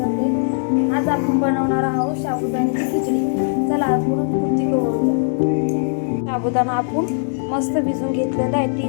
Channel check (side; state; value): right; silent; digital silence